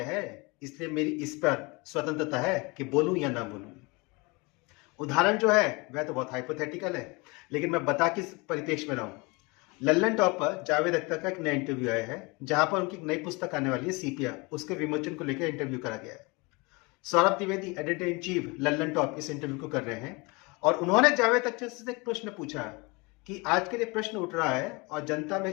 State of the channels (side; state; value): right; quieter; 27.1 dB